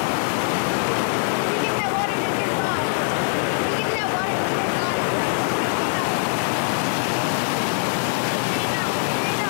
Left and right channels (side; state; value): right; silent; digital silence